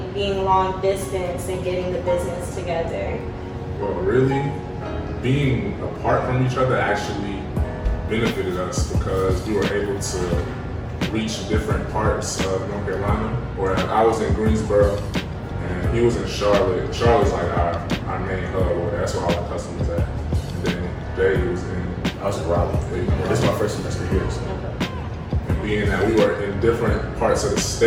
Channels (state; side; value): identical; both; correlation 1.00